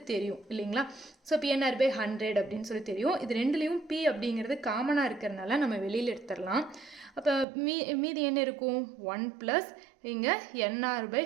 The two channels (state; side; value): drops out; left; at 7.5 s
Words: தெரியும் இல்லைங்களா? ஸோ P/100 அப்படின்னு சொல்லி தெரியும். இது ரெண்டுலேயும் P அப்படிங்கிறது காமனாக இருக்கிறதுனால நம்ம வெளியில் எடுத்துடலாம். அப்போ மீதி என்ன இருக்கும்? 1 + இங்கே